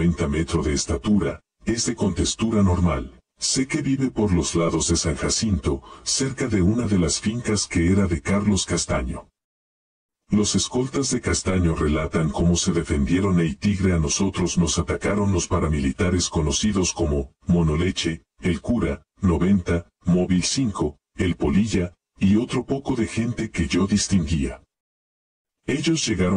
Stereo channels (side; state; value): both; identical; correlation 1.00